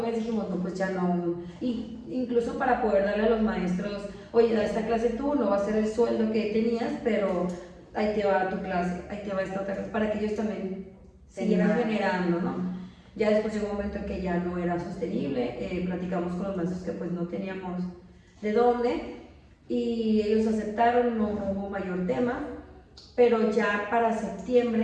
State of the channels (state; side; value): identical; both; correlation 1.00